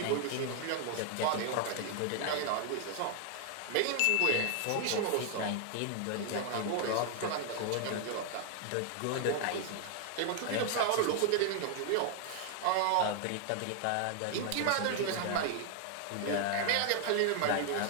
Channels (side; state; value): both; different; correlation 0.00